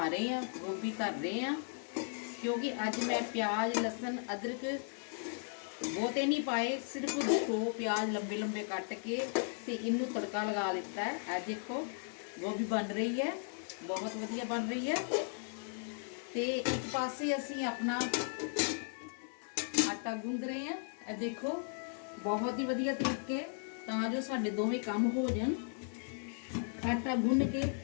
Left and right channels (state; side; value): silent; right; 54 dB below the other